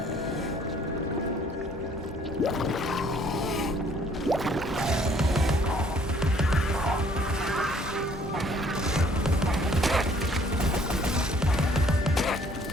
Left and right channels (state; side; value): normal; both; correlation 0.60